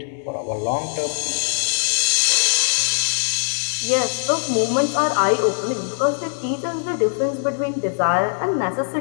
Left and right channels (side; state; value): right; silent; 65 dB below the other